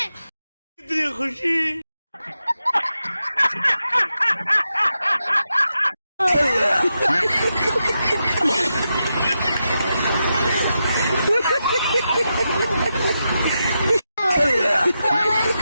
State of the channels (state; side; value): inverted; both; correlation -0.87